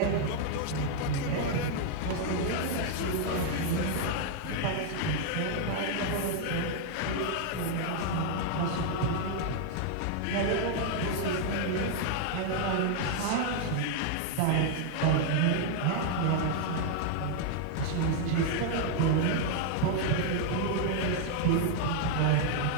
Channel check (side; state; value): both; different; correlation 0.00